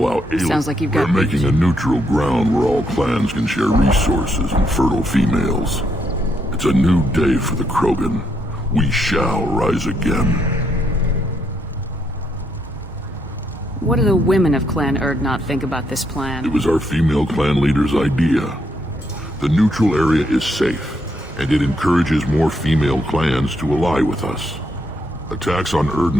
aliens. Sounds like you've got We're making a neutral ground where all clans can share resources and fertile females. It's a new day for the Krogan. We shall rise again. What do the women of Clan Urdnot think about this plan? It was our female clan leader's idea. The neutral area is safe, and it encourages more female clans to ally with us. Attacks on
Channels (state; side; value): normal; both; correlation 0.76